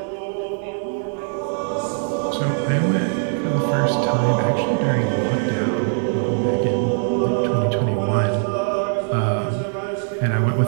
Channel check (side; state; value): left; silent; 60 dB below the other